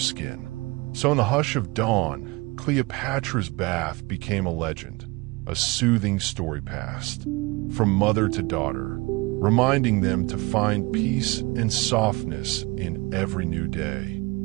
So in the hush of dawn, Cleopatra's bath became a legend, a soothing story passed from mother to daughter, reminding them to find peace and softness in every new day.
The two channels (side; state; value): left; quieter; 24.4 dB